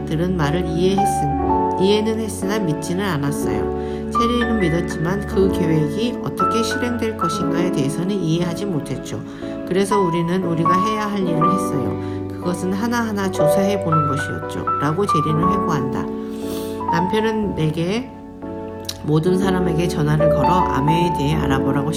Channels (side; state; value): both; identical; correlation 1.00